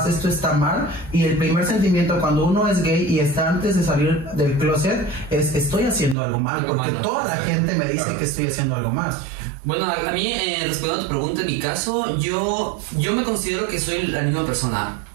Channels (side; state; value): left; drops out; at 6.2 s